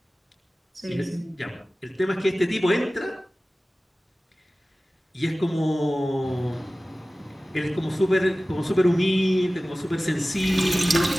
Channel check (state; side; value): normal; both; correlation 0.97